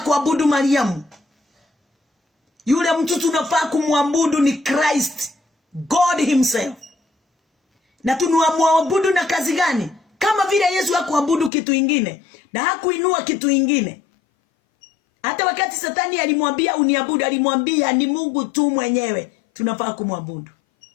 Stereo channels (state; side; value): drops out; right; at 11.5 s